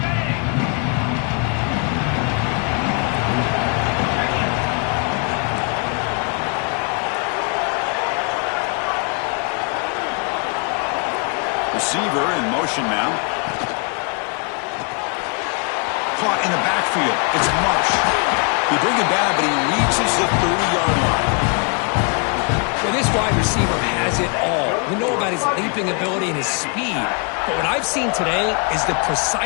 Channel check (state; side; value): quieter; right; 37.1 dB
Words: Receiver in motion now. Caught in the backfield. It's Marsh. He bring it down, but he reaches the 30-yard line. Well, this wide receiver has it all. We know about his leaping ability and his speed. But what I've seen today is the